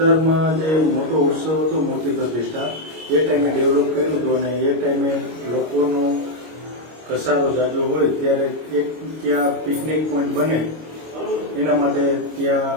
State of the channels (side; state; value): left; late; 25 ms